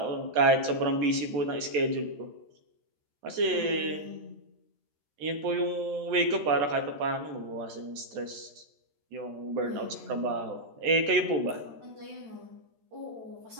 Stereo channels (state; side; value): late; left; 14 ms